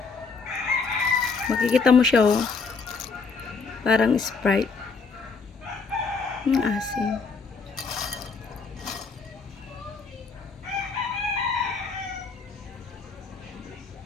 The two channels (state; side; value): quieter; right; 4.8 dB